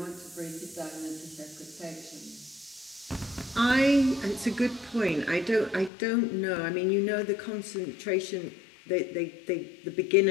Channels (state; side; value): drops out; right; at 5.9 s